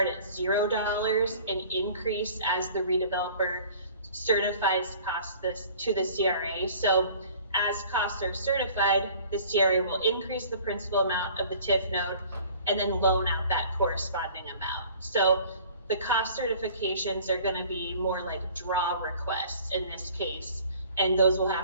at $0 and increase as the redeveloper certifies costs to the CRA. So as costs are certified, the CRA will increase the principal amount of the TIF note and then loan out that corresponding amount. So the cost certifications are going to be more like draw requests in this case, and those will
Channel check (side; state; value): both; inverted; correlation -0.49